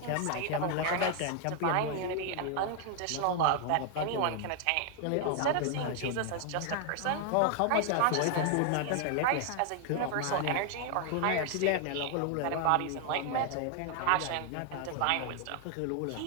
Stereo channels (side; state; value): both; different; correlation 0.00